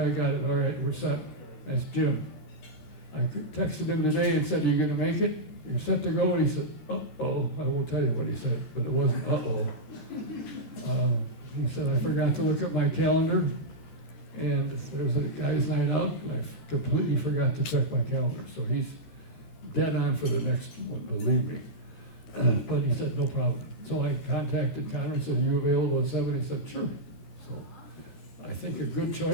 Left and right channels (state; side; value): late; right; 13 ms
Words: got it. All right, we're set. That's Jim. I texted him today and said, are you going to make it? You're set to go? And he said, uh-oh. I won't tell you what he said, but it wasn't uh-oh. He said, I forgot to look at my calendar, and there's a guy's night out, and I completely forgot to check my calendar. So he's dead on for the next one, believe me. But he said, no problem. So I contacted Conor and said, are you available at 7? He said, sure. So I think a good